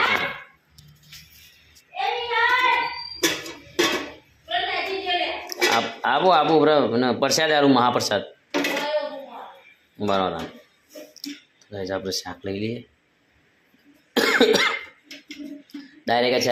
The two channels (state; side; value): identical; both; correlation 1.00